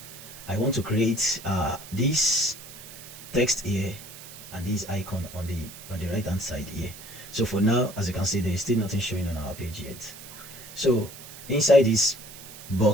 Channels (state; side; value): noise; right; hiss, 15 dB below the sound